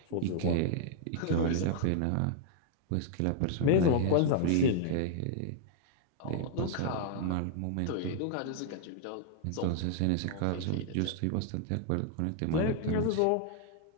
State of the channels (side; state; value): both; different; correlation -0.01